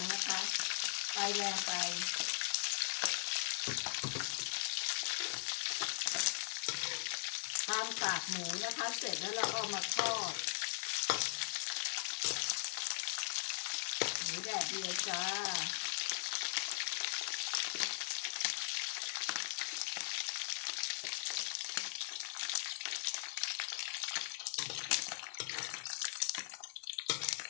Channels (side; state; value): right; silent; digital silence